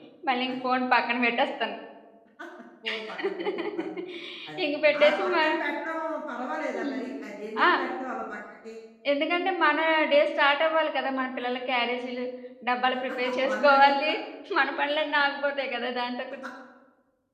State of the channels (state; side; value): identical; both; correlation 1.00